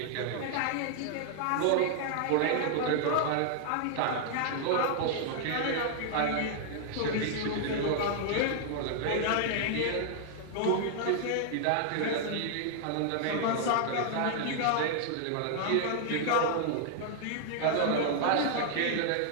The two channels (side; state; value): both; different; correlation -0.01